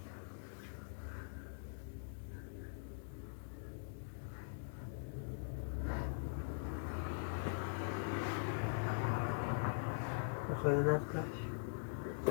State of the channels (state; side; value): silent; right; digital silence